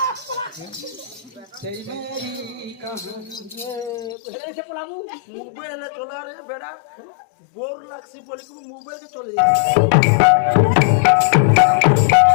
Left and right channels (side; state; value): right; drops out; at 4.2 s